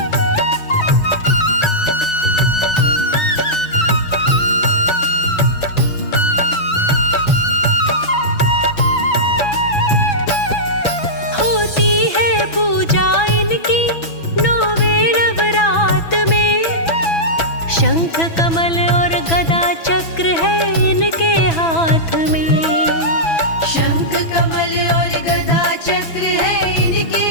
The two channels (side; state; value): right; late; 6.0 ms